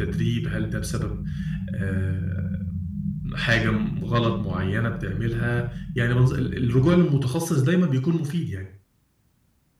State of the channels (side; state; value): both; identical; correlation 1.00